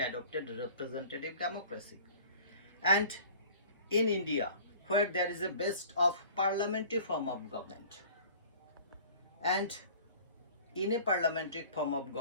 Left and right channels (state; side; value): inverted; both; correlation -0.47